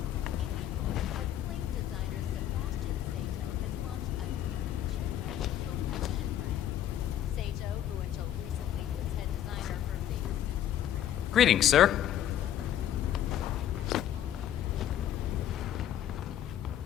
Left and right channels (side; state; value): right; quieter; 11.1 dB